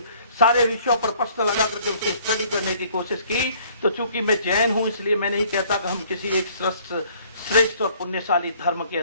सारे विषयों पर प्रश्न लगा करके उसकी स्टडी करने की कोशिश की, तो चूंकि मैं जैन हूं इसलिए मैं नहीं कहता कि हम किसी एक श्रेष्ठ और पुण्यशाली धर्म के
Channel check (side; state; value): both; inverted; correlation -0.58